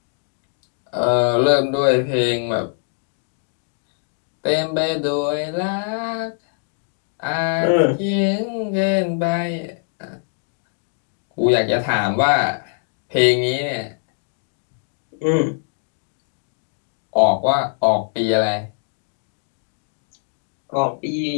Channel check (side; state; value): right; silent; 64 dB below the other